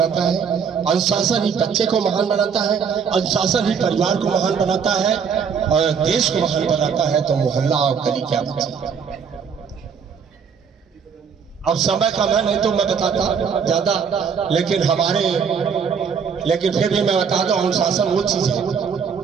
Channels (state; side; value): quieter; left; 6.5 dB